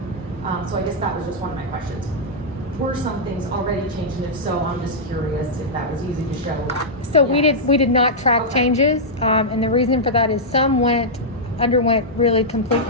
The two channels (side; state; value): both; normal; correlation -0.09